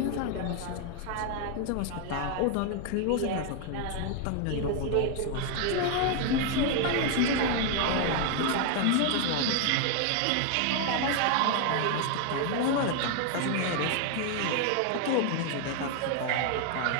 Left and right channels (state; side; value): different; both; correlation 0.00